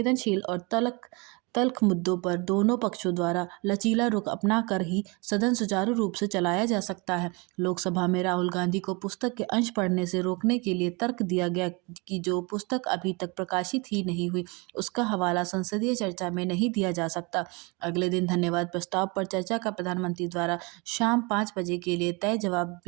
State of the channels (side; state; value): left; quieter; 28.6 dB